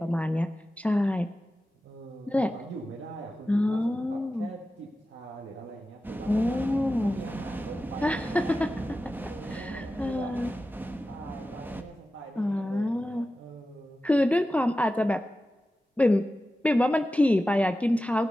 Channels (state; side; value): normal; both; correlation 0.94